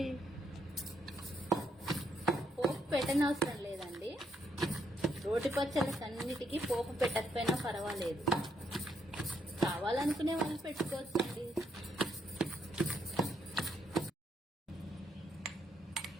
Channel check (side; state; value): both; normal; correlation 0.75